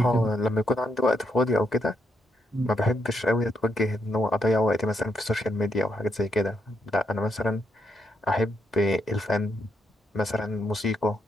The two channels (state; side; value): normal; both; correlation 0.78